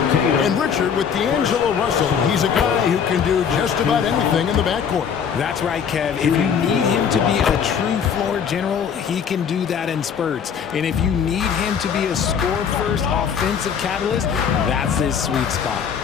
And Richard, with D'Angelo Russell, he's a guy who can do just about anything in the backcourt. That's right, Kev. If you need him to be a true floor general, he can do that in spurts. And if you need him to be a score-first offensive catalyst, that's his sweet spot.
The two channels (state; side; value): quieter; right; 7.3 dB